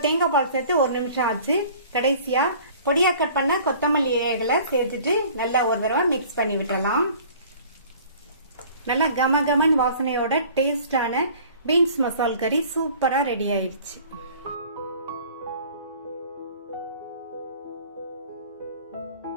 தேங்காய் பால் சேர்த்து 1 நிமிஷம் ஆச்சு. கடைசியா பொடியா கட் பண்ண கொத்தமல்லி இலைகளை சேர்த்துட்டு நல்லா ஒரு தடவை மிக்ஸ் பண்ணி விட்டுறலாம். நல்லா கமகமன் வாசனையோட டேஸ்டான பீன்ஸ் மசால் கறி சூப்பரா ரெடி ஆயிடுச்சு.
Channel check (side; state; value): both; inverted; correlation -0.49